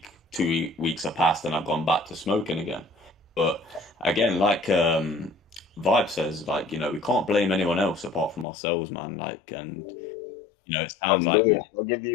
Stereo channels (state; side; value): drops out; right; at 8.5 s